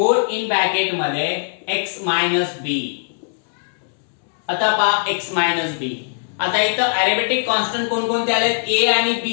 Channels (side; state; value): right; silent; digital silence